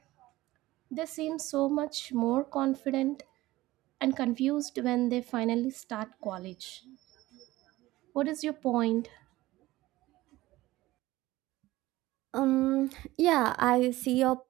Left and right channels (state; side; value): quieter; left; 17.7 dB